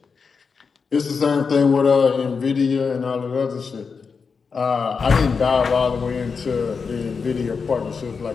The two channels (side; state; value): right; quieter; 5.3 dB